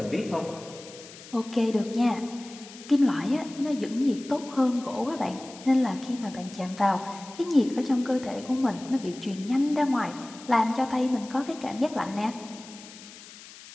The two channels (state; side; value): noise; left; hiss, 17 dB below the sound